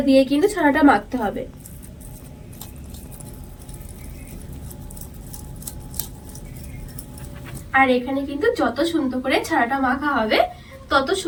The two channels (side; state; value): both; identical; correlation 1.00